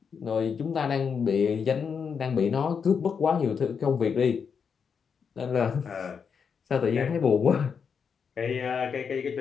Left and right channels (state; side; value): quieter; right; 6.4 dB